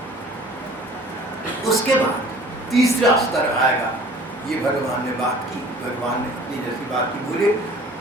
उसके बाद तीसरा स्तर आएगा। ये भगवान ने बात की, भगवान ने अपनी जैसी बात की बोले।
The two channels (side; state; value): both; normal; correlation 0.49